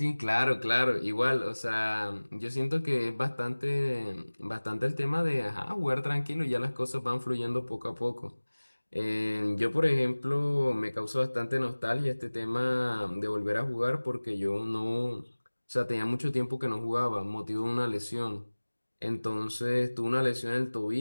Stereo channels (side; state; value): both; inverted; correlation -1.00